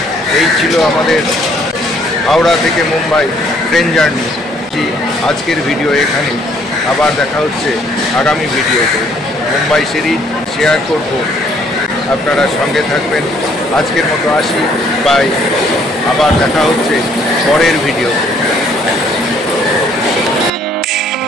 এই ছিল আমাদের হাওড়া থেকে মুম্বাই ট্রেন জার্নি। আজকের ভিডিও এখানে, আবার দেখা হচ্ছে আগামী ভিডিওতে। মুম্বাই সিরিজ শেয়ার করব, আপনারা সঙ্গে থাকবেন। আজকের মতো আসি, বাই। আবার দেখা হচ্ছে পরের ভিডিওতে।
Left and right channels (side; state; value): both; normal; correlation 0.64